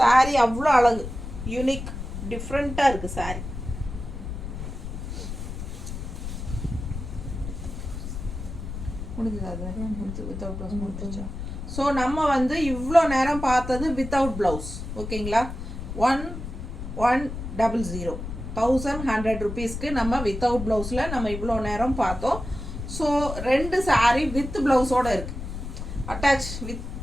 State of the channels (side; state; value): left; noise; rumble, 7 dB below the sound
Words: அவ்வளோ அழகு, யூனிக், டிஃப்ரெண்ட்டாக இருக்குது சாரீ. முடிஞ்சது அது முடிஞ்சு வித்தவுட் ப்ளவுஸ் முடிஞ்சிச்சா. ஸோ நம்ம வந்து இவ்வளோ நேரம் பார்த்தது வித்தவுட் ப்ளவுஸ். ஓகேங்களா, 1100 1100 ருபீஸ்க்கு நம்ம வித்தவுட் ப்ளவுஸில் நம்ம இவ்வளோ நேரம் பார்த்தோம். ஸோ 2 சாரீ வித் ப்ளவுஸோடு இருக்குது, அட்டாச்